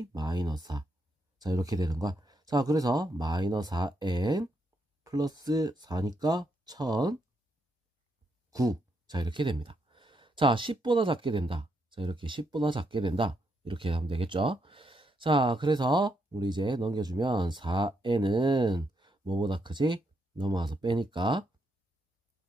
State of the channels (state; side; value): normal; both; correlation 0.79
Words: -4. 자, 이렇게 되는 거야. 자, 그래서 -4n 플러스 4니까 1009. 자, 이렇게 됩니다. 자, 10보다 작게 된다. 자, 이렇게 10보다 작게 된다. 이렇게 하면 되겠죠. 자, 그래서 우리 이제 넘겨주면 4n은 뭐보다 크지? 넘어와서 빼니까